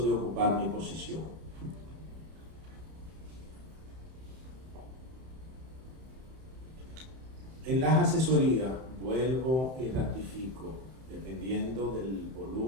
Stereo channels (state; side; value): late; left; 31 ms